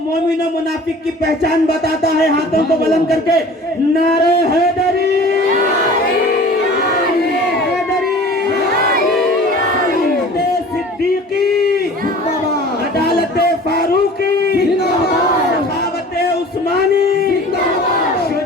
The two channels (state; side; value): normal; both; correlation 0.43